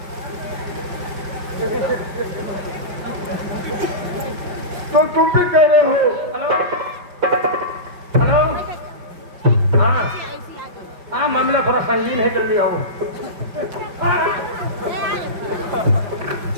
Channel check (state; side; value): late; left; 5.7 ms